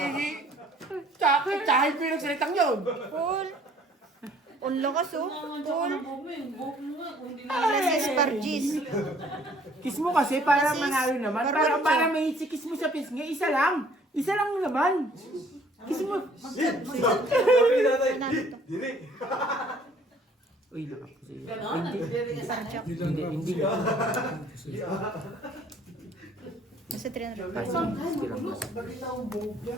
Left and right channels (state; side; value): normal; both; correlation 0.58